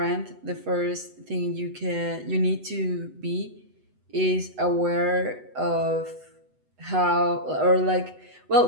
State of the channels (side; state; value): left; late; 8.0 ms